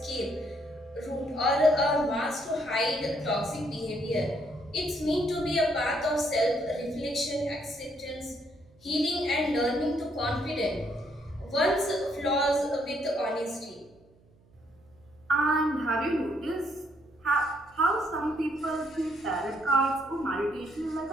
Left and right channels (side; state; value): right; noise; hum, 30 dB below the sound